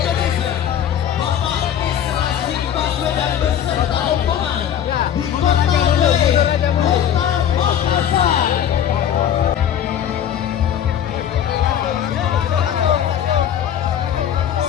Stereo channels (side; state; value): right; quieter; 9.7 dB